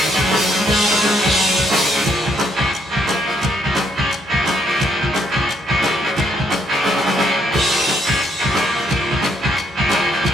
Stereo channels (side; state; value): both; normal; correlation 0.72